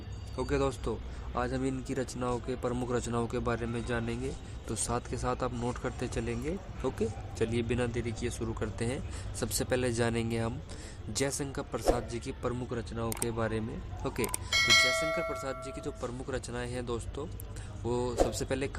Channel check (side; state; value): both; identical; correlation 1.00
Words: ओके दोस्तों, आज हम इनकी रचनाओं के प्रमुख रचनाओं के बारे में जानेंगे, तो साथ के साथ आप नोट करते चलेंगे। ओके, चलिए बिना देरी किए शुरू करते हैं। सबसे पहले जानेंगे हम जयशंकर प्रसाद जी की प्रमुख रचनाओं के बारे में। ओके, तो जयशंकर प्रसाद जी की जो प्रमुख रचनाएं हैं दोस्तों, वो सबसे पहले